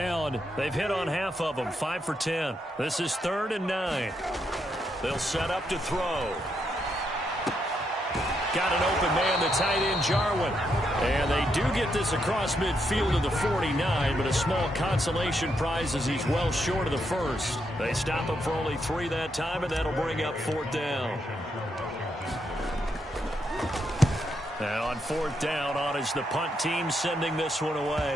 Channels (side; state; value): both; normal; correlation 0.79